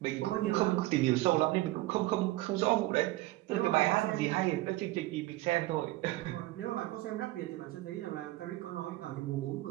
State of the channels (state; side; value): quieter; left; 18.2 dB